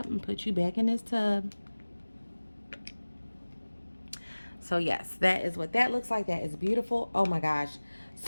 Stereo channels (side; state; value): both; inverted; correlation -1.00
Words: and put you back in this tub. So yes, that is what that looks like. That is beautiful. Oh my gosh.